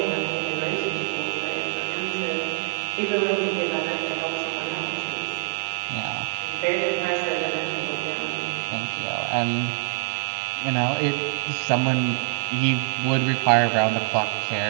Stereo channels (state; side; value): silent; left; 59 dB below the other